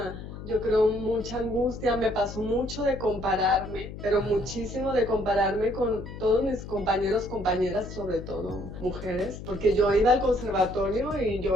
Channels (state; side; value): noise; left; hum, 11 dB below the sound